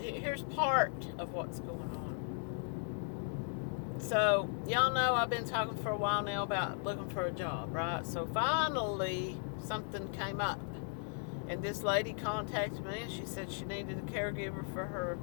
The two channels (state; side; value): silent; right; 53 dB below the other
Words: part of what's going on. So, y'all know I've been talking for a while now about looking for a job, right? So finally, something came up. And this lady contacted me, and she said she needed a caregiver for her